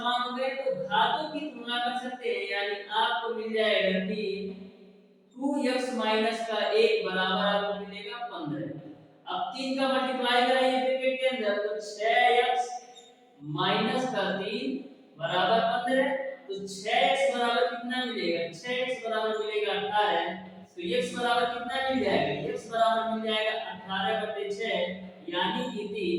हो गए तो घातों की तुलना कर सकते हैं, यानी आपको मिल जाएगा कि 2x माइनस का 1 बराबर आपको मिलेगा 15। अब 3 का मल्टीप्लाई कराइए ब्रैकेट के अंदर तो 6x माइनस का 3 बराबर 15, तो 6x बराबर कितना मिलेगा, 6x बराबर मिलेगा 18। तो x बराबर कितना मिल जाएगा, x बराबर मिल जाएगा 18/6 यानी कि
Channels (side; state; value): both; identical; correlation 1.00